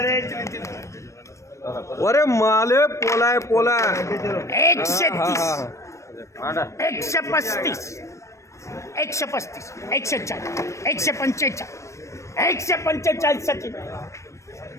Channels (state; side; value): late; right; 0.15 ms